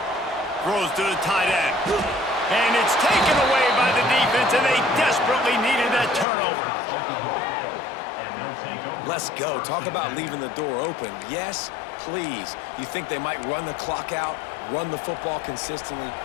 Throws to the tight end. And it's taken away by the defense, and they desperately needed that turnover. Let's go. Talk about leaving the door open. Yes, please. You think they might run the clock out, run the football consistently?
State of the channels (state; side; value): drops out; right; at 6.2 s